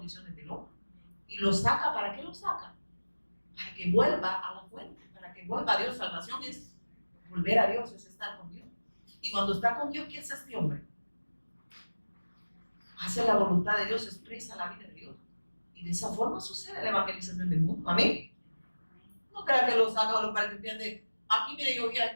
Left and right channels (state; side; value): inverted; both; correlation -1.00